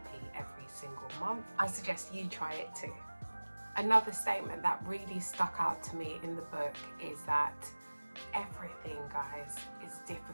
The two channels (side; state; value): both; inverted; correlation -1.00